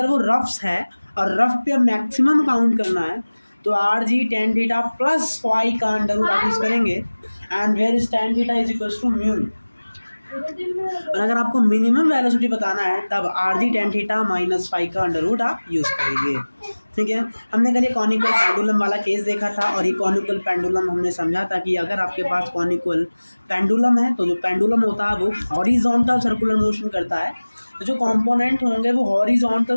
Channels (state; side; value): inverted; both; correlation -1.00